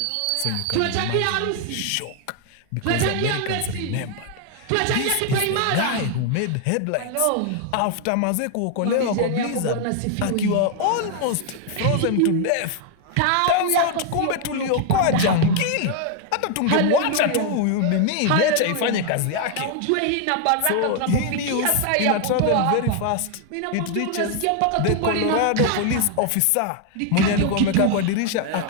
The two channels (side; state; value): both; different; correlation 0.00